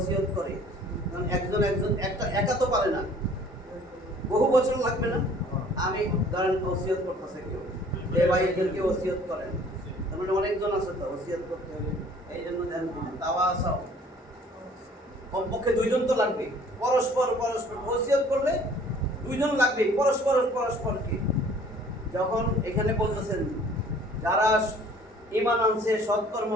করে তখন একজন একটা একা তো পারে না বহু বছর লাগবে না আমি ধরেন ওসিয়ত করতেছে কেউ এই ভাই এদেরকে ওসিয়ত করেন তার মানে অনেকজন আছে তো ওসিয়ত করতে হবে এই জন্য ধ্যান দিন তাওয়াসাউ কমপক্ষে দুইজন তো লাগবে পরস্পর ওসিয়ত করলে দুইজন লাগবে পরস্পরকে যখন এখানে বলতেছেন যারা ঈমান আনছে সৎকর্ম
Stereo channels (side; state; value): both; normal; correlation 0.53